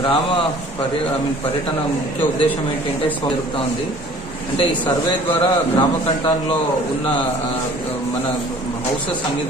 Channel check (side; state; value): both; normal; correlation 0.51